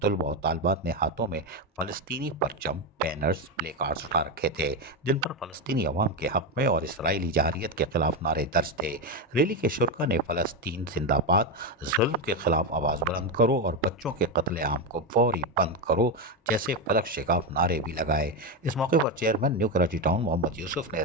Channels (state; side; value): normal; both; correlation 0.11